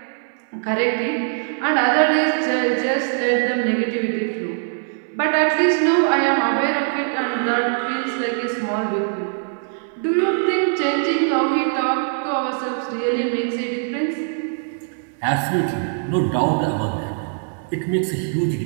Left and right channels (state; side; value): silent; left; digital silence